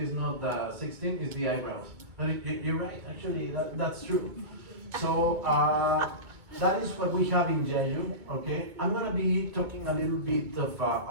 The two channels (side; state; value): left; late; 2.2 ms